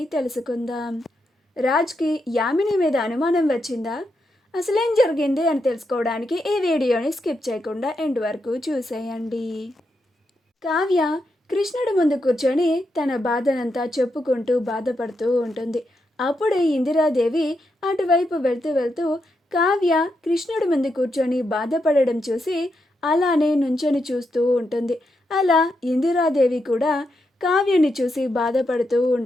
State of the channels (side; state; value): both; normal; correlation 0.83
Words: తెలుసుకుందాం. రాజ్కి యామిని మీద అనుమానం వచ్చిందా? అసలేం జరిగింది అని తెలుసుకోవడానికి ఈ వీడియోని స్కిప్ చేయకుండా ఎండ్ వరకు చూసేయండి. కావ్య కృష్ణుడి ముందు కూర్చొని తన బాధనంతా చెప్పుకుంటూ బాధపడుతూ ఉంటుంది. అప్పుడే ఇందిరాదేవి అటువైపు వెళ్తూ వెళ్తూ కావ్య కృష్ణుడి ముందు కూర్చొని బాధపడడం చూసి అలానే నుంచొని చూస్తూ ఉంటుంది. అలా ఇందిరాదేవి కూడా కావ్యని చూసి బాధపడుతూ